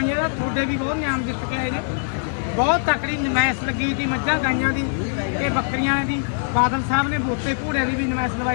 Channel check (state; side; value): silent; right; digital silence